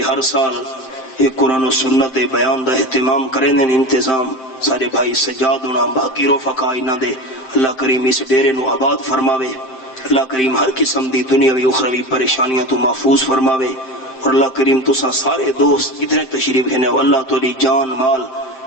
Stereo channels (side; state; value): right; late; 7.6 ms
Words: ہر سال ایک قرآن و سنت بیان دا اہتمام کرنے انتظام سارے بھائی سجاد ہونا باقی رفقا انہاں دے، اللہ کریم اس ڈیرے نو آباد فرماوے، اللہ کریم ہر قسم دی دنیاوی اخروی پریشانیاں تو محفوظ فرماوے، اور اللہ کریم تساں سارے دوست ادھر تشریف ہیں اللہ تولی جان مال